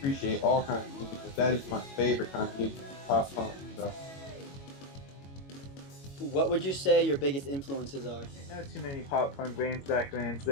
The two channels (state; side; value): late; right; 22 ms